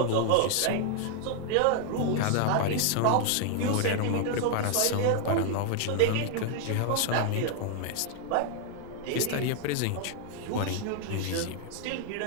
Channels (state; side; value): different; both; correlation 0.00